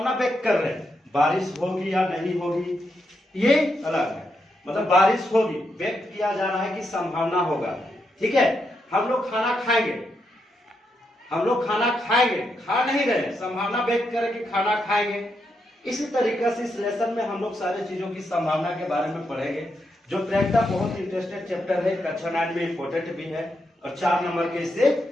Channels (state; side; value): normal; both; correlation 0.82